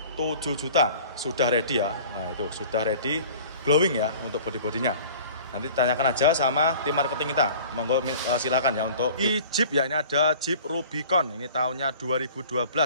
juta, sudah ready ya. Nah, itu sudah ready, glowing ya untuk bodi-bodinya. Nanti tanyakan aja sama tim marketing kita. Monggo silakan ya. Untuk Jeep ya, ini ada Jeep Rubicon, ini tahunnya 2012.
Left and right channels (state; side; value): inverted; both; correlation -0.45